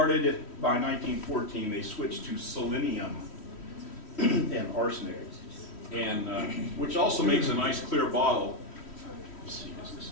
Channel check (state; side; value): late; right; 3.1 ms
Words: by 1914, they switched to selenium and arsenic, and which also makes a nice clear bottle. Let's see,